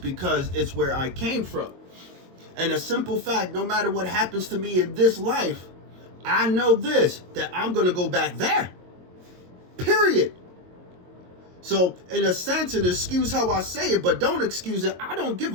it's where I came from. And a simple fact, no matter what happens to me in this life, I know this, that I'm going to go back there. Period. So, in a sense, and excuse how I say it, but don't excuse it, I don't give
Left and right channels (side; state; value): left; late; 22 ms